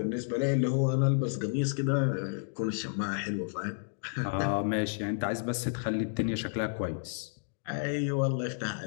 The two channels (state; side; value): silent; right; digital silence